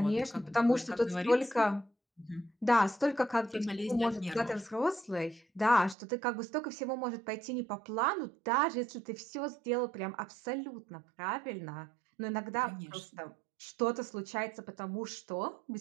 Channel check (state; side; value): drops out; left; at 6.0 s